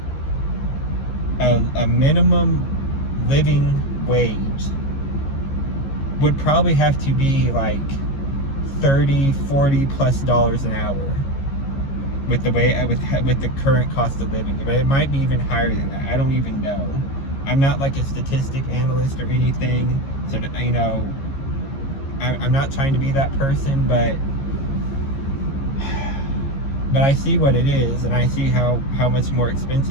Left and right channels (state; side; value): late; right; 15 ms